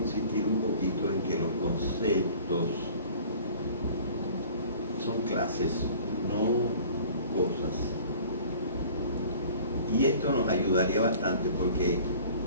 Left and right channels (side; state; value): both; inverted; correlation -0.47